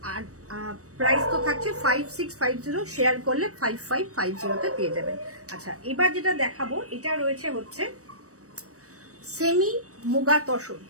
আর প্রাইস তো থাকছে 5650, শেয়ার করলে 5550-তে পেয়ে যাবেন। আচ্ছা, এবার যেটা দেখাবো এটা রয়েছে হচ্ছে semi muga tussar.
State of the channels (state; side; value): late; left; 0.65 ms